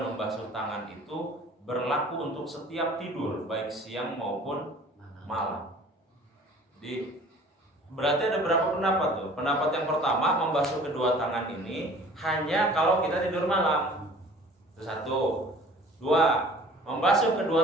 membasuh tangan itu berlaku untuk setiap tidur, baik siang maupun malam. Jadi berarti ada berapa pendapat tuh? Pendapat yang pertama, membasuh kedua tangan ini hanya kalau kita tidur malam. Itu 1. 2, membasuh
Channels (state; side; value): normal; both; correlation 0.48